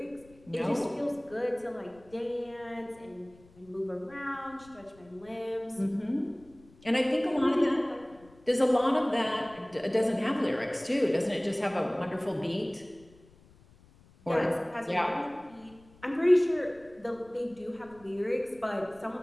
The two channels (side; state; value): left; noise; rumble, 26 dB below the sound